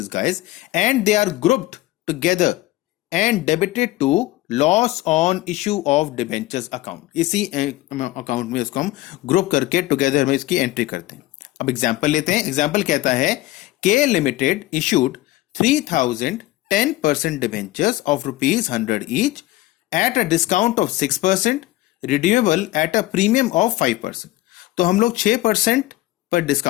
guys, and they are grouped together and debited to loss on issue of debentures account. इसी account में इसको हम group करके together में इसकी entry करते हैं। अब एग्जांपल लेते हैं। एग्जांपल कहता है के limited issued 3000 10% debentures of ₹100 each at a discount of 6%, redeemable at a premium of 5%। तो हम लोग 6% पर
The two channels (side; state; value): right; quieter; 17.0 dB